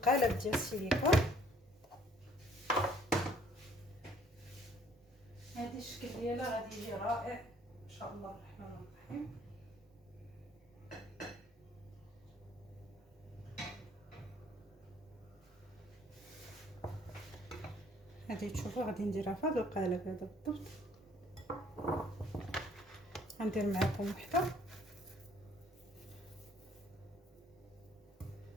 ديال السيليكون. هذه الشكل ديالها غادي يجي رائع ان شاء الله الرحمن الرحيم. هذه تشوفوا غادي نديرها في هذا القالب هذا بالضبط. غندير معكم وحده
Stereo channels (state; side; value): normal; both; correlation 0.60